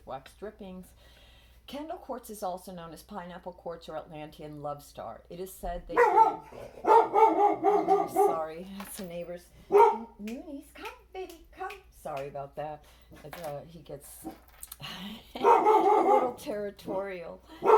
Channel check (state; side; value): identical; both; correlation 1.00